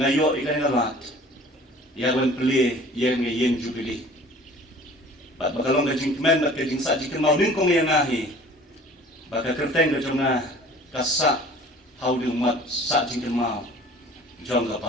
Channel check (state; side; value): normal; both; correlation 0.47